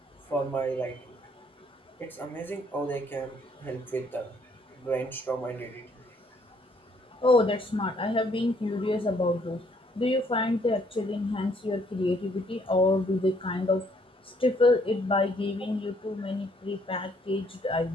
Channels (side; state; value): both; normal; correlation 0.67